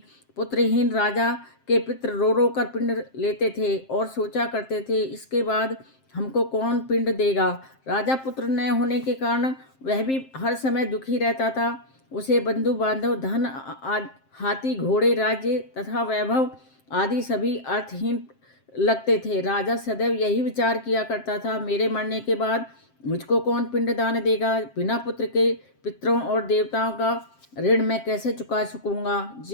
पुत्रहीन राजा के पितृ रो रो कर पिंड लेते थे और सोचा करते थे, इसके बाद हमको कौन पिंड देगा। राजा पुत्र न होने के कारण वह भी हर समय दुखी रहता था। उसे बंधु बांधव, धन, हाथी घोड़े, राज्य तथा वैभव आदि सभी अर्थहीन लगते थे। राजा सदैव यही विचार किया करता था, मेरे मरने के बाद मुझको कौन पिंडदान देगा। बिना पुत्र के पितरों और देवताओं का ऋण मैं कैसे चुका सकूंगा।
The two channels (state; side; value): late; right; 7.6 ms